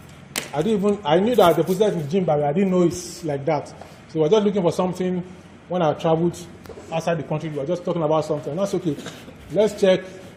I knew that I deposited in the gene bank, I didn't know it's like that. So I was just looking for something when I traveled outside the country. We were just talking about something. That's okay. Let's check.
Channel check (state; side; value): identical; both; correlation 1.00